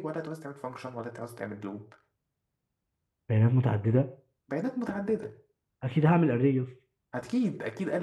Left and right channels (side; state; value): both; identical; correlation 1.00